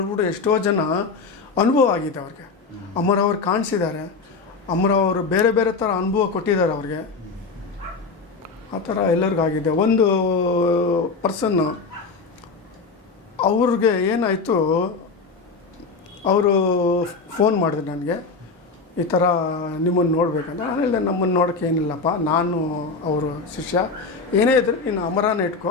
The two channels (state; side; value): quieter; right; 4.4 dB